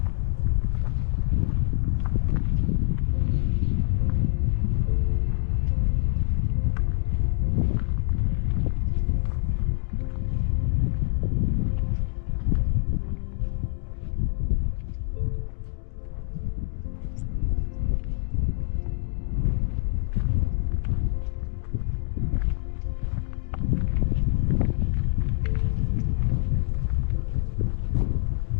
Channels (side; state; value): right; silent; 61 dB below the other